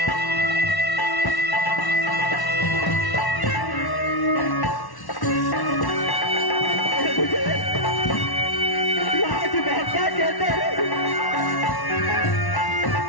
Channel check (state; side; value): late; right; 1.1 ms